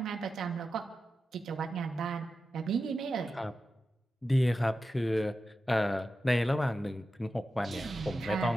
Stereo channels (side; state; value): both; normal; correlation 0.91